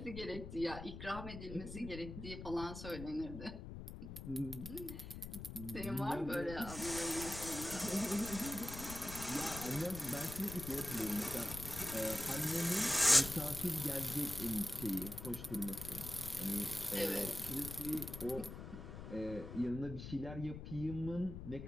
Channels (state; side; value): noise; left; rumble, 9 dB below the sound